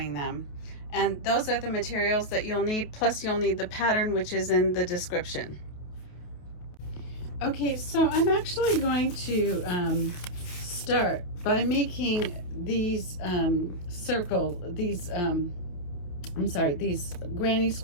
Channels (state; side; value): late; right; 28 ms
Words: them. And those are the materials that you'll need, plus you'll need the pattern, which is in the description. Okay, so I'm actually going to start by making these these granny